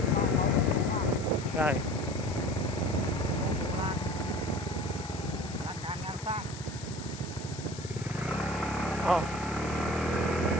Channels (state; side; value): noise; left; hiss, 14 dB below the sound